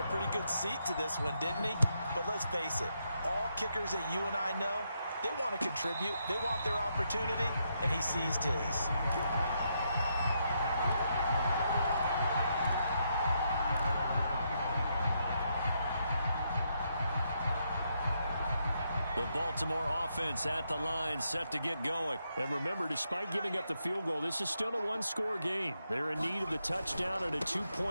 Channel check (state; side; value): inverted; both; correlation -0.79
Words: a pretty good seat to this one, didn't he? But let's face it, all kickers that you and I know, they want to contribute. They want their opportunity, and he seized his. The Baltimore offense at the line, set to get going. And remember, despite giving up the field goal, this is still a one-score game. They're in need of the touchdown and a